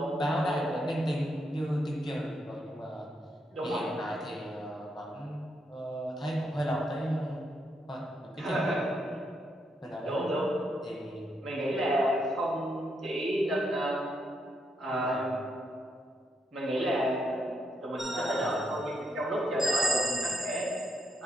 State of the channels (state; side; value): normal; both; correlation 0.78